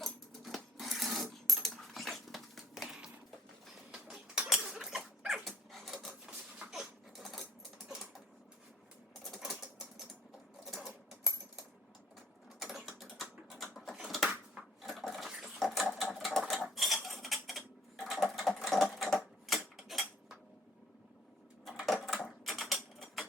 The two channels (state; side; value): normal; both; correlation 0.59